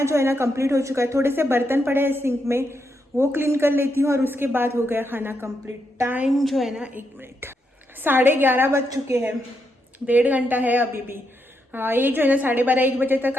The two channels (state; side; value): normal; both; correlation 0.81